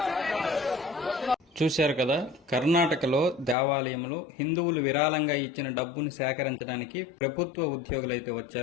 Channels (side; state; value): right; drops out; at 3.6 s